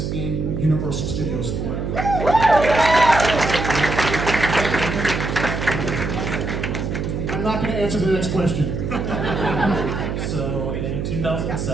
in Universal Studios Florida. I'm not going to answer the next question. So in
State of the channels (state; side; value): noise; right; hum, 3 dB below the sound